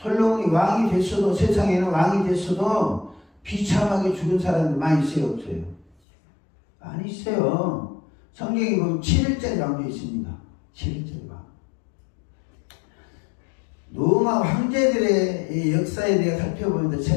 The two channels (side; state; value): right; drops out; at 6.0 s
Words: 왕이 됐어도, 세상에는 왕이 됐어도 비참하게 죽은 사람들 많이 있어요, 없어요? 많이 있어요. 성경에 보면 7일째 왕도 있습니다. 7일째 왕. 로마 황제들의 역사에 대해 살펴보면서